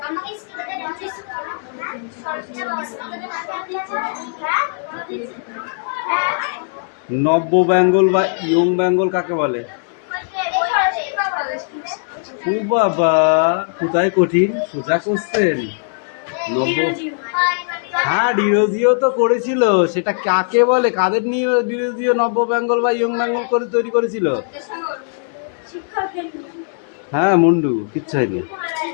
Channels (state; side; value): silent; right; 66 dB below the other